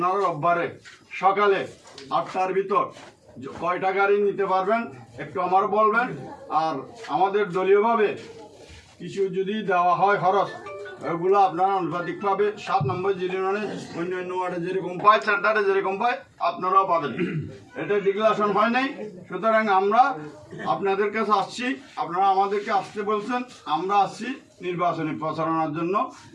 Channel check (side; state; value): both; identical; correlation 1.00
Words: রোববারে সকালে 8টার ভিতর কয়টা গাড়ি নিতে পারবেন একটু আমার বলবেন। আর আমাদের দলীয়ভাবে কিছু যদি দেওয়া হয় খরচ, ওগুলো আপনারা আনুপাতিকভাবে 7 নম্বর ইউনিয়নে অন্য অন্য ওয়ার্ডে যেরকম পায়, সেন্টারে যেরকম পায় আপনারাও পাবেন। এটা ডিক্লারেশন হয় নাই, সুতরাং আমরা আপনাদের কাছে আসছি, আপনারা আমাদেরকে আসতে বলছেন, আমরা আসছি নির্বাচনী প্রচারণার জন্য।